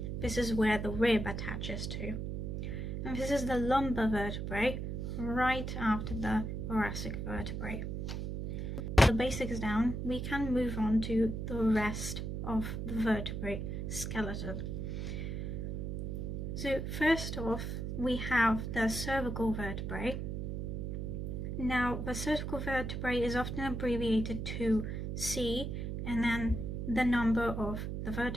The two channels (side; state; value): right; noise; hum, 3 dB below the sound